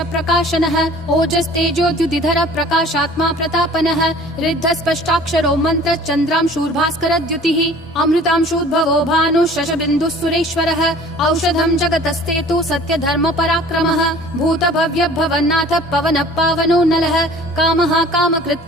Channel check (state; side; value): normal; both; correlation 0.48